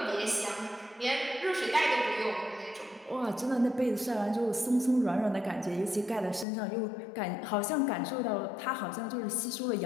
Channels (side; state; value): right; drops out; at 6.5 s